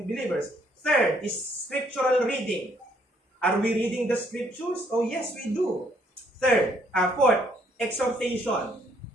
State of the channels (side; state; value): both; normal; correlation 0.67